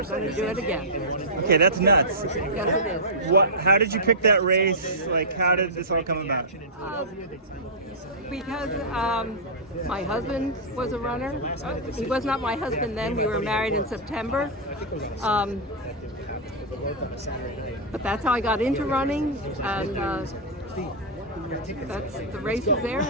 going to do it again. Okay, that's nuts. Yes, it is. How did you pick that race? Like, how did this all come about? Because my husband was a runner. He was not my husband then. We were married in September. But that's how I got into running, and the race was there,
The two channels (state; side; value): normal; both; correlation -0.12